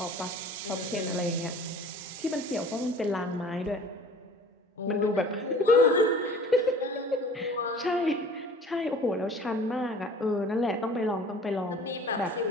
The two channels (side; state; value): both; normal; correlation 0.46